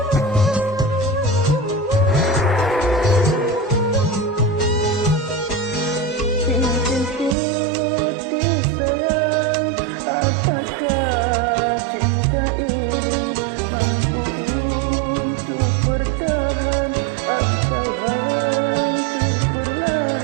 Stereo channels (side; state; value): left; drops out; at 7.4 s